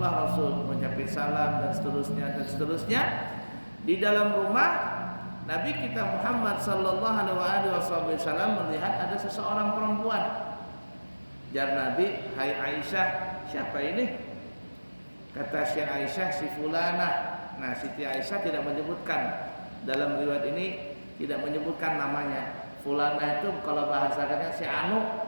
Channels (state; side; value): inverted; both; correlation -1.00